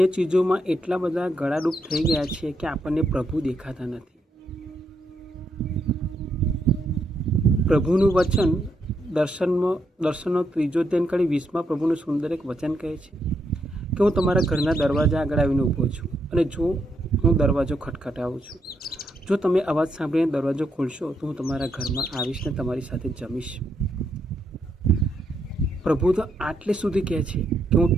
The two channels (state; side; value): normal; both; correlation 0.78